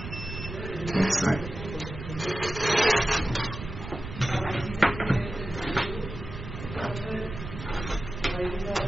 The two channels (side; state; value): right; noise; rumble, 9 dB below the sound